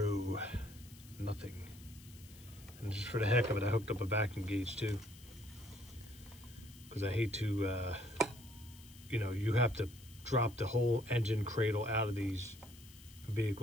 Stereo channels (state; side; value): noise; left; hiss, 21 dB below the sound